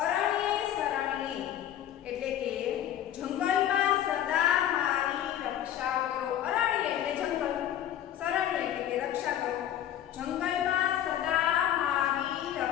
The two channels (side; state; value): right; quieter; 11.1 dB